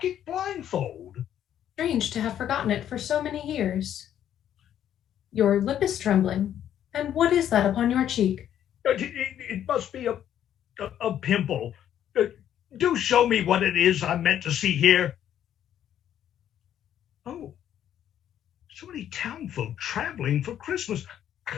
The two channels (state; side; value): quieter; right; 10.5 dB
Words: it blindfold. Strange to have forgotten it for so many years. Your lip is trembling. And what is that upon your cheek? It must be a pimple. Do show me what it is I'm meant to see here. Oh, so many townfolk traveling for Christmas.